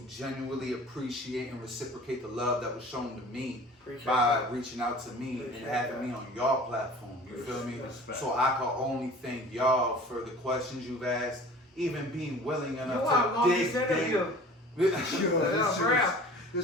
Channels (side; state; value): both; normal; correlation 0.44